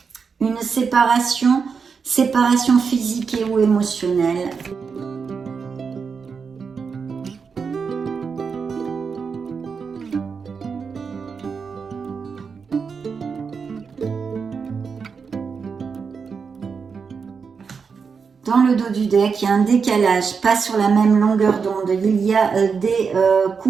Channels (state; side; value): quieter; left; 5.6 dB